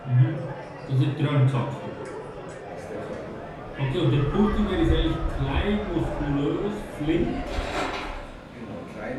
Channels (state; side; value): identical; both; correlation 1.00